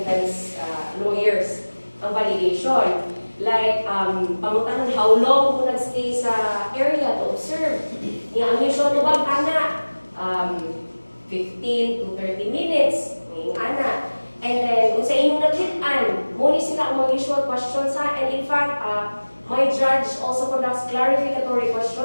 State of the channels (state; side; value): inverted; both; correlation -1.00